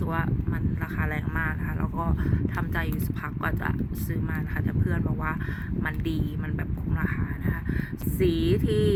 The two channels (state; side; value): identical; both; correlation 1.00